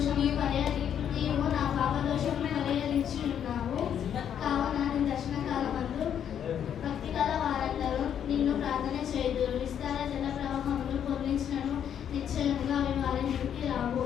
నీవు నా పాప దోషమును పరిహరించి ఉన్నావు. కావున నీ దర్శన కాలమందు భక్తిగల వారందరూ నిన్ను ప్రార్థన చేయుదురు. విస్తార జల ప్రవాహములు పొర్లించినను నిశ్చయముగా అవి వారి మీదకి రావు.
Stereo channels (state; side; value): quieter; right; 9.1 dB